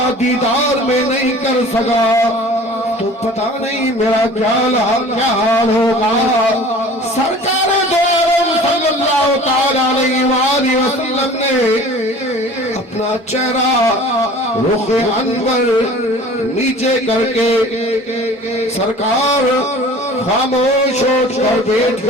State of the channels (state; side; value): normal; both; correlation 0.44